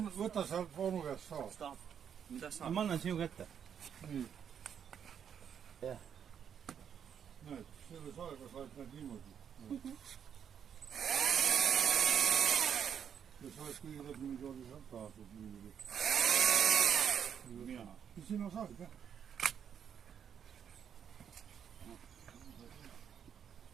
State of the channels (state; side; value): quieter; left; 8.2 dB